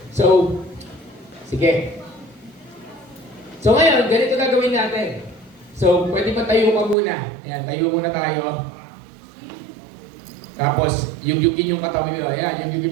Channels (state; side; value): drops out; left; at 7.0 s